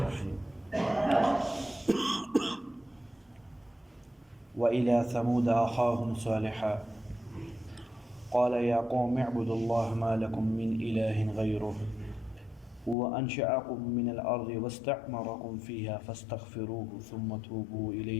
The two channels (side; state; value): right; drops out; at 13.0 s